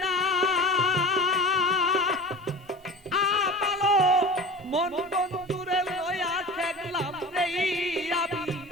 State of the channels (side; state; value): both; normal; correlation 0.36